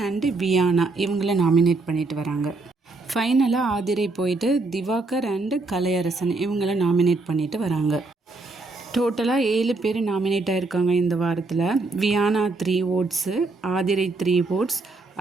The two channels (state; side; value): quieter; left; 3.5 dB